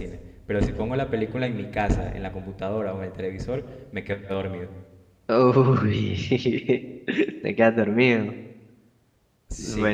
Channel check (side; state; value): both; identical; correlation 1.00